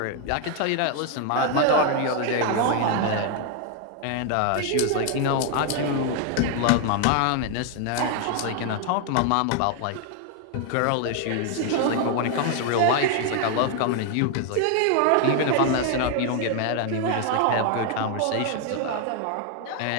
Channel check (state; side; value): different; both; correlation 0.00